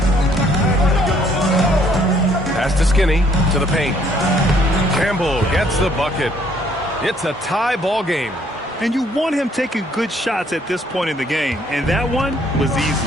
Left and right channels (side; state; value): both; normal; correlation 0.64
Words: Pass to Skinny to the paint. Campbell gets the bucket. It's a tie ball game. And you want him taking good shots at this point in the game. And that one was